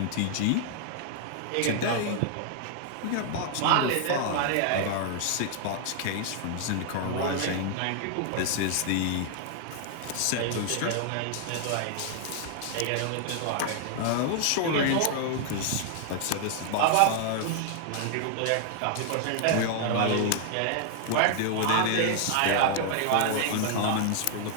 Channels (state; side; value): different; both; correlation 0.00